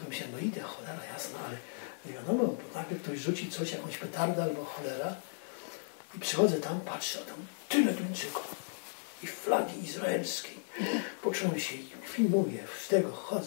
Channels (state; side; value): silent; right; digital silence